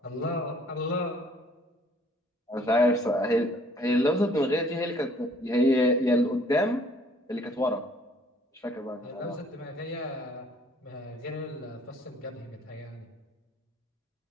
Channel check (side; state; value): both; normal; correlation 0.59